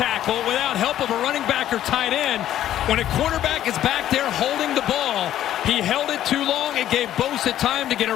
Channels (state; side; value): quieter; right; 12.0 dB